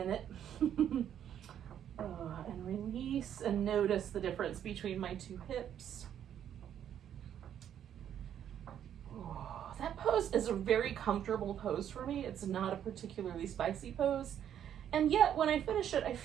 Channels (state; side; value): quieter; left; 9.8 dB